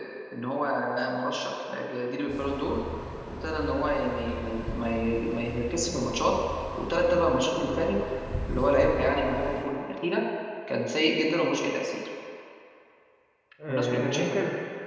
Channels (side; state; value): both; identical; correlation 1.00